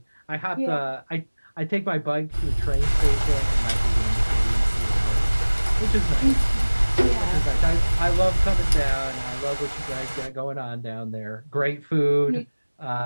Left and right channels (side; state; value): both; inverted; correlation -1.00